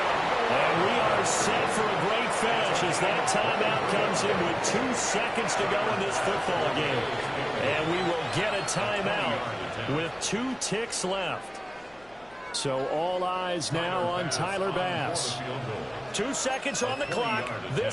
And we are set for a great finish as that timeout comes in with 2 seconds to go in this football game. And we will get a timeout with 2 ticks left. So all eyes now on Tyler Bass. 2 seconds on the clock.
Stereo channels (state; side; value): noise; left; hum, 30 dB below the sound